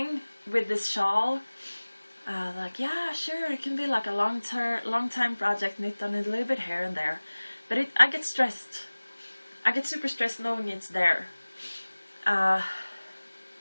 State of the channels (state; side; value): inverted; both; correlation -1.00